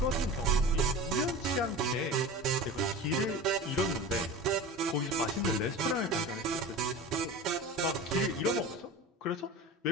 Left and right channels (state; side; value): normal; both; correlation 0.33